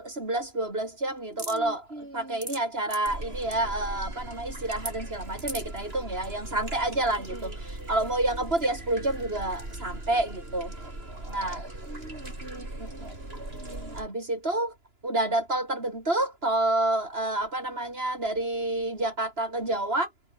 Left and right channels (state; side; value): late; left; 2.9 ms